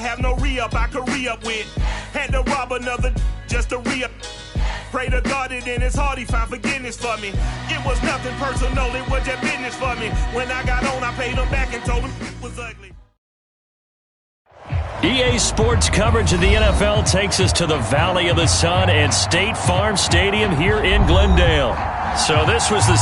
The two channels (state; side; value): identical; both; correlation 1.00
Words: no re-up I could re-up with. Had to rob another just to re-up. Pray to God that in his heart he found forgiveness for me. It was nothing personal, it was just business for me. When I got on, I paid him back and told him it was ugly. EA Sports coverage of the NFL takes us to the Valley of the Sun and State Farm Stadium here in Glendale. So this was the